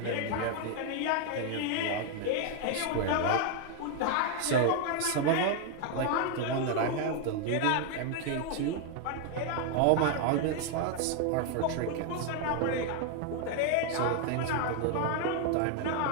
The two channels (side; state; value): both; different; correlation 0.00